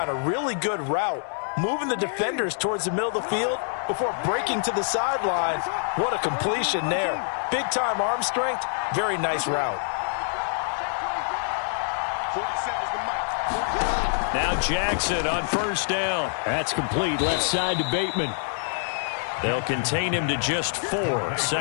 A really good route. Moving the defenders towards the middle of the field before breaking to the sideline. What a completion there. Big-time arm strength. Very nice route. 47 is the mic. Now Jackson on first down. That's complete left side to Bateman. They'll contain him to just 4.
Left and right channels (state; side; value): silent; right; digital silence